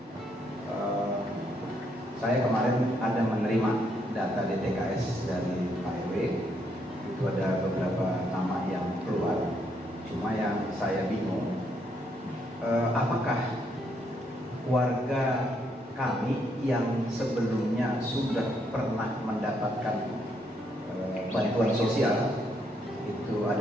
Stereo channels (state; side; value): normal; both; correlation 0.74